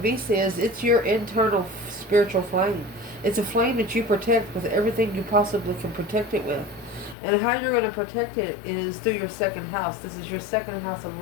is, it's your internal spiritual flame. It's a flame that you protect with everything you possibly can protect it with. And how you're going to protect it is through your second house. This is your second house of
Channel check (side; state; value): right; drops out; at 7.2 s